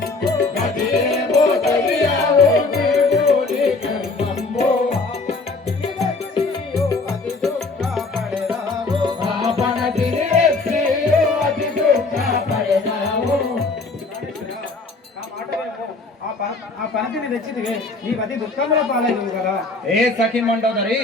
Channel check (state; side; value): quieter; right; 3.6 dB